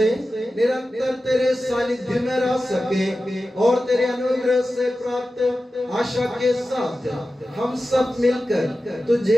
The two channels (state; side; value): normal; both; correlation 0.94